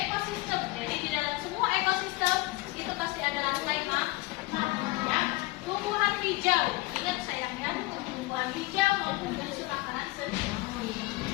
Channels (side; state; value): right; quieter; 20.9 dB